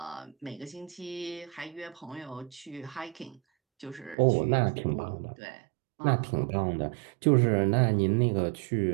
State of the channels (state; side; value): drops out; left; at 4.2 s